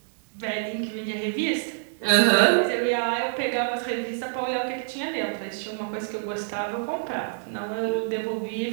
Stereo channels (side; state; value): left; silent; digital silence